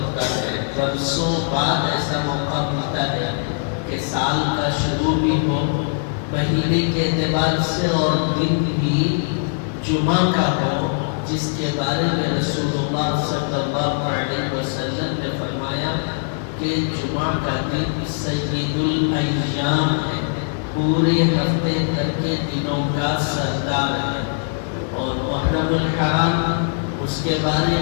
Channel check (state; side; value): silent; right; 63 dB below the other